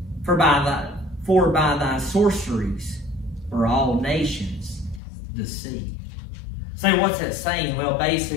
For by thy sorceries were all nations deceived. So what's that saying? Well,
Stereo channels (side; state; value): right; drops out; at 5.0 s